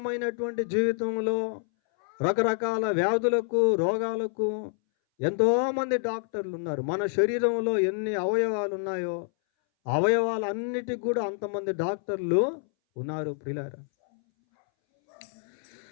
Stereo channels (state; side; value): silent; right; 60 dB below the other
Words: జీవితంలో రకరకాల వ్యాధులకు, రోగాలకు ఎంతోమంది డాక్టర్లు ఉన్నారు. మన శరీరంలో ఎన్ని అవయవాలు ఉన్నాయో అవయవాలన్నిటికి కూడా అంతమంది డాక్టర్లు ఉన్నారు ప్రియులారా.